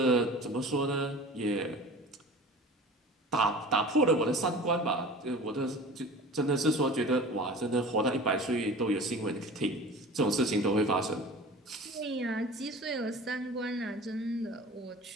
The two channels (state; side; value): normal; both; correlation 0.39